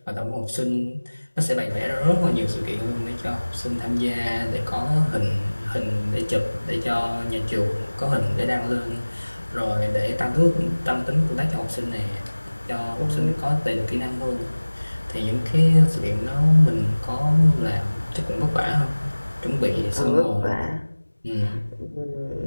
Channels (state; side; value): inverted; both; correlation -1.00